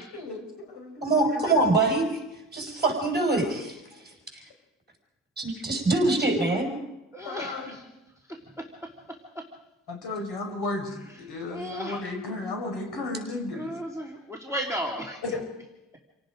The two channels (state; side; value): normal; both; correlation 0.34